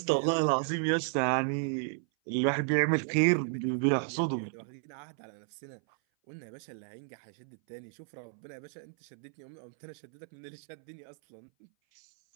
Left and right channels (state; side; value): silent; left; 56 dB below the other